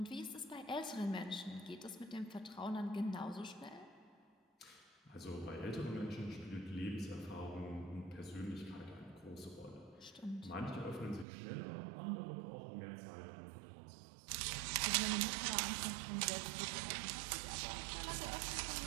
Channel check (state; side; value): drops out; left; at 11.2 s